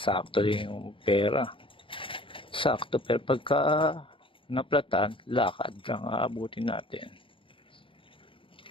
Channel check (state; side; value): late; right; 0.25 ms